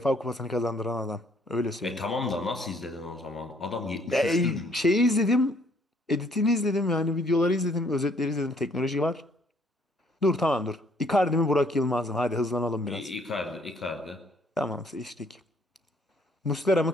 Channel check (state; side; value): normal; both; correlation 0.64